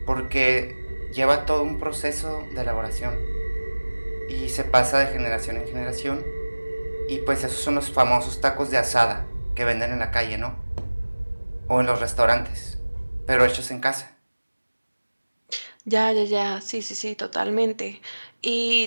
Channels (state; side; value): inverted; both; correlation -1.00